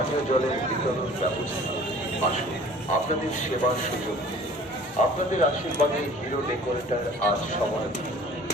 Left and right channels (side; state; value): both; normal; correlation 0.48